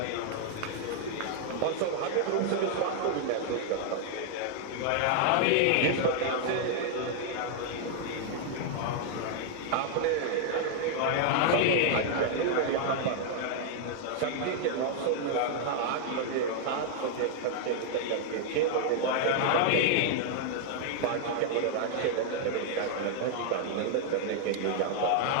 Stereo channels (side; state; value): both; different; correlation 0.00